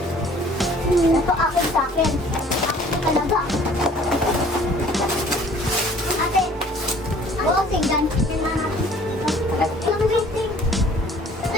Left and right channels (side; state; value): both; normal; correlation 0.53